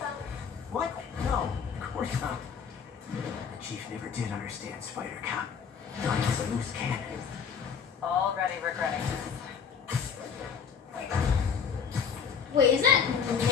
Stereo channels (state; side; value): quieter; right; 6.7 dB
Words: What? No, of course not. The chief never did understand Spider Cop. Thought he was a loose cannon. Already regretting this. Wait, is that